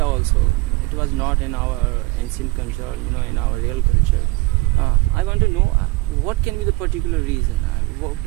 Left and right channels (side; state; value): left; quieter; 23.3 dB